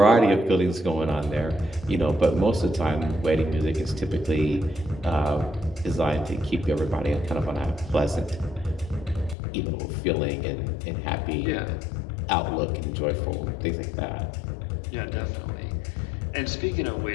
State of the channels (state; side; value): drops out; right; at 9.3 s